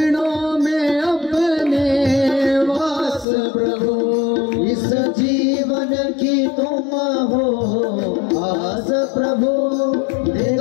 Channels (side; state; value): right; drops out; at 3.2 s